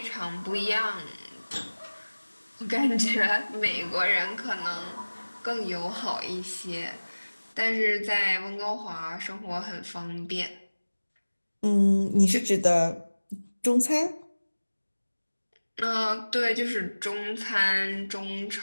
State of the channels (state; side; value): inverted; both; correlation -1.00